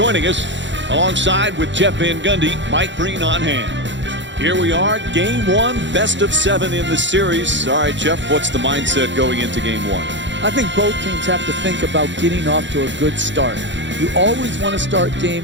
us. Alongside with Jeff Van Gundy, Mike Green on hand. Here we are, game one, best of 7 in the series. All right, Jeff, what's the mindset going into game one? I think both teams have to think about getting off to a good start. You always want to start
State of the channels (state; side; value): late; left; 0.53 ms